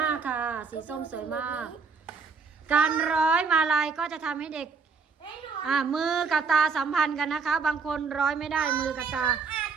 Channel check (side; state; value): left; quieter; 5.1 dB